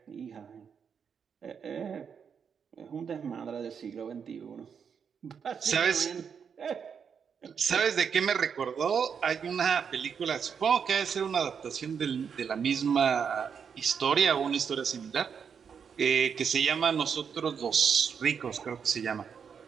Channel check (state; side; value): quieter; left; 6.9 dB